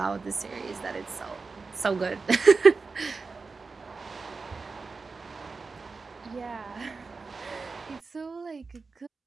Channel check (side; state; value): left; quieter; 4.3 dB